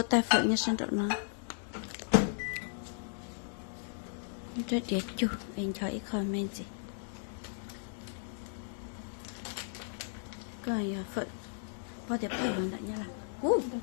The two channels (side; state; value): right; silent; digital silence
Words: tay phải như sang trọng nó rất đẹp chú anh chói comment gì rồi phận bao giờ phải làm như là